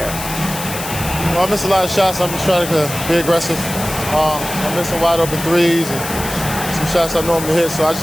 Well, I missed a lot of shots. I'm just trying to be aggressive. I'm missing wide open threes and some shots I normally hit, so I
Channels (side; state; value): left; noise; hiss, 8 dB below the sound